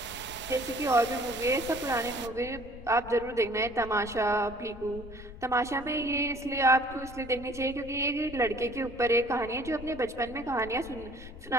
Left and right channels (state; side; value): noise; left; rumble, 15 dB below the sound